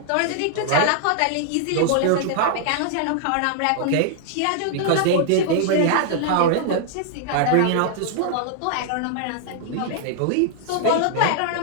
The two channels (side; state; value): both; different; correlation -0.01